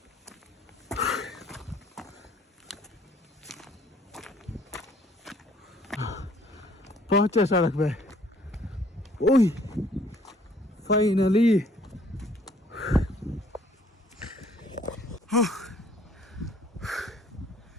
पहुंचे सड़क पे। ओह फाइनली।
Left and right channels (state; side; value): normal; both; correlation 0.60